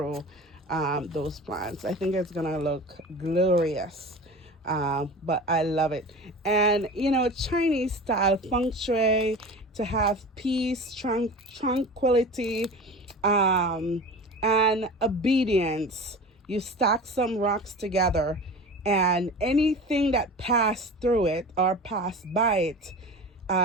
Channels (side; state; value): both; normal; correlation 0.34